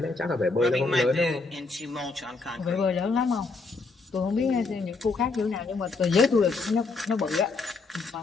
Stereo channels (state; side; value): quieter; right; 3.9 dB